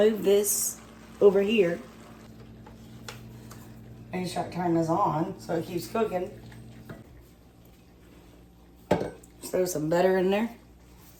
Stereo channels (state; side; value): identical; both; correlation 1.00